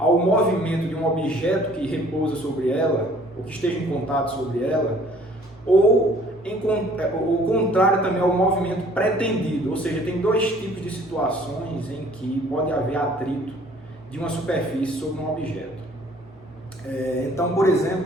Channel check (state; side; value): normal; both; correlation 0.56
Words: movimento de um objeto que repousa sobre ela, ou que esteja em contato sobre ela, ou contrário também ao movimento pretendido, ou seja, tem dois tipos de situações em que pode haver atrito de uma superfície sobre um objeto. Então, por